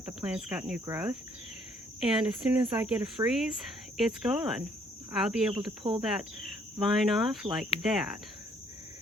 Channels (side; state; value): both; normal; correlation 0.64